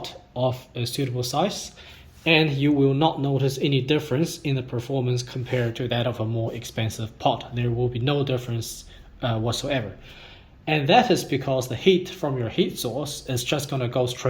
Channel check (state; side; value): identical; both; correlation 1.00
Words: of a suitable size, and you will not notice any difference in the performance compared to that of a more expensive pot. There will be no difference whatsoever. And that is because the heat from your heat source is just going to go